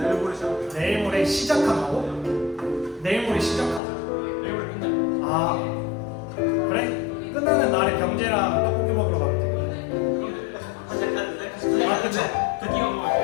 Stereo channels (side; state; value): right; drops out; at 3.8 s